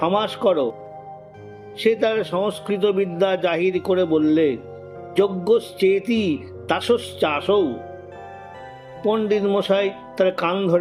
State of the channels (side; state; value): both; identical; correlation 1.00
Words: করো। সে তার সংস্কৃত বিদ্যা জাহির করে বললে, যজ্ঞশ্চেতি তাসশ্চাসৌ। পণ্ডিত মশাই তার কান